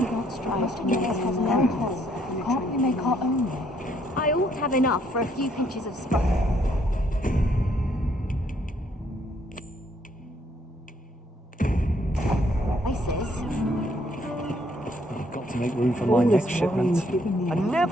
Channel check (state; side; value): normal; both; correlation 0.68